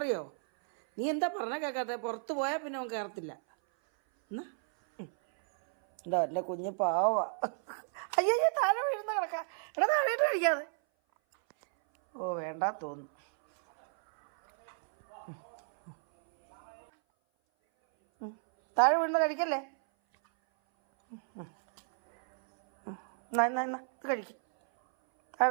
നീ എന്താ പറഞ്ഞാൽ കേൾക്കാത്ത? പുറത്ത് പോയാൽ പിന്നെ അവൻ കയറത്തില്ല. എന്നാ എന്താ എൻ്റെ കുഞ്ഞ് പാവാ. അയ്യോ താഴെ വീഴുന്ന കിടക്കാം. എടാ താഴെയിട്ട് കഴിക്കാതെ. ഓ വേണ്ട തോന്നുന്നു. താഴെ വീഴുന്ന കഴിക്കല്ലേ. ഇത് കഴിക്കും.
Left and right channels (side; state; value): left; silent; 56 dB below the other